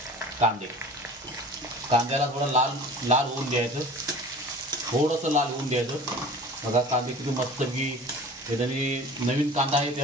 कांद्याला थोडं लाल होऊन द्यायचं, थोडंसं लाल होऊन द्यायचं बघा। कांदे किती मस्त की त्याने नवीन कांदा आहे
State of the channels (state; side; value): normal; both; correlation 0.41